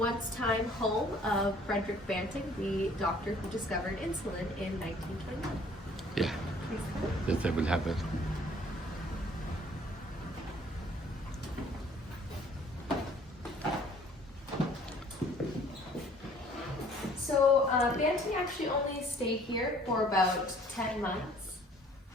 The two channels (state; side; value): normal; both; correlation 0.56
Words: home of Frederick Banting, the doctor who discovered insulin in 1921. Yeah, yes, I will have it. So Banting actually only stayed here for about 10 months.